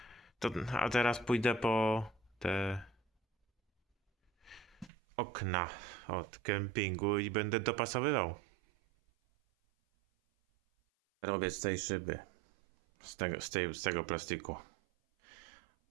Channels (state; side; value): drops out; left; at 4.9 s